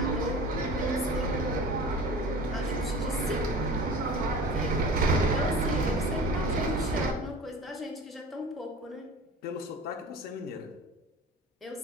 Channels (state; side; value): normal; both; correlation 0.39